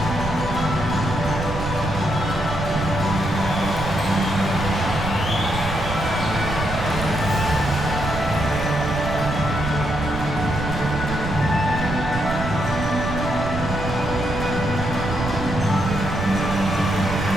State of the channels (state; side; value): noise; right; rumble, 7 dB below the sound